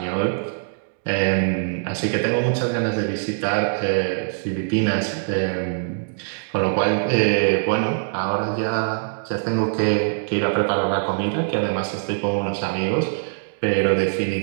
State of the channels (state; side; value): silent; left; digital silence